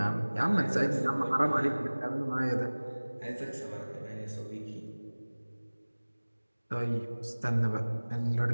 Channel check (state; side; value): inverted; both; correlation -1.00